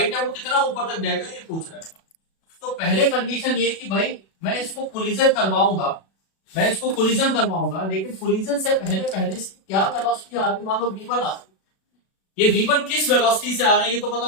है वो कितना ऊपर तक जाएगा ये पूछ रहा है। तो पहले कंडीशन ये कि भाई मैं इसको कोलिजन करवाऊंगा, मैं इसको कोलिजन करवाऊंगा, लेकिन कोलिजन से पहले पहले क्या वेलोसिटी आ रही, मान लो v1 आ रही, ये v1 किस वेलोसिटी से आ रहा है ये तो पता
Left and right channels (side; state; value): right; late; 37 ms